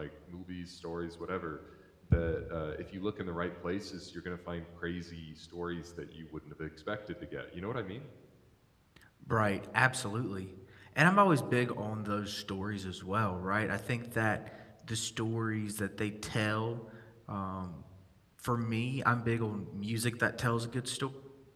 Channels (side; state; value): both; identical; correlation 1.00